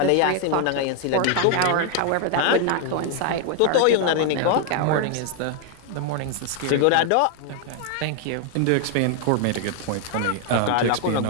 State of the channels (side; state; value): both; different; correlation 0.00